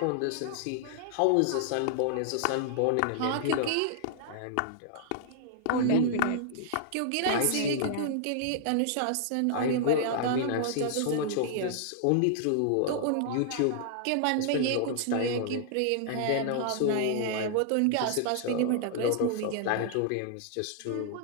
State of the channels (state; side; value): different; both; correlation -0.01